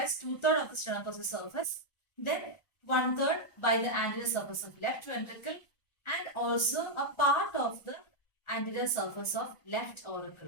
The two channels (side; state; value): right; late; 1.5 ms